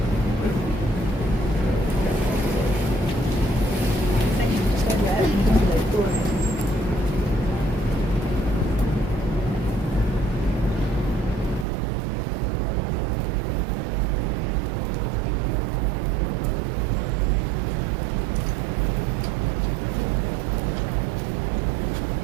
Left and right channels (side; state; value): left; drops out; at 11.7 s